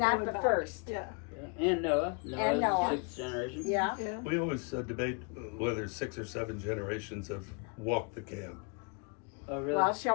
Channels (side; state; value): right; quieter; 34.7 dB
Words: the first. Yeah. Yeah. And Noah. And Noah. 6th generation. Yeah. Yeah. We always debate whether 6 or 7 generations have walked the camp. Oh, really? Well,